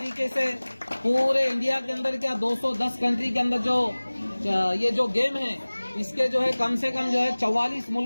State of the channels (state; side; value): inverted; both; correlation -1.00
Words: से पूरे इंडिया के अंदर क्या 210 कंट्री के अंदर जो ये जो गेम है इसके जो है कम से कम जो है 44